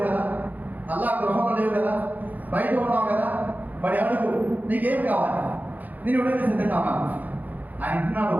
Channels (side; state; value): left; late; 0.082 ms